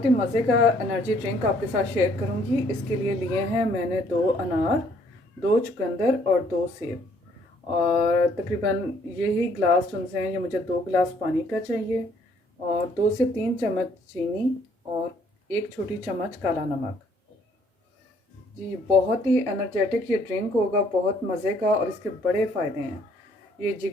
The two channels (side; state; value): both; normal; correlation 0.64